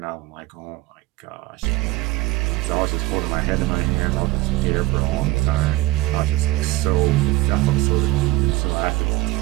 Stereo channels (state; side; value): quieter; left; 18.2 dB